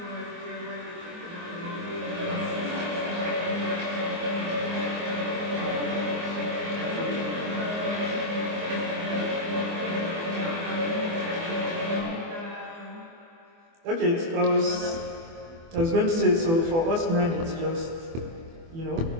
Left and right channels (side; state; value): left; late; 24 ms